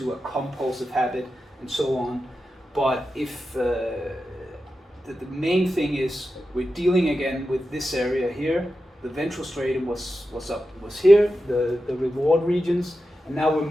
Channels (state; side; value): normal; both; correlation 0.91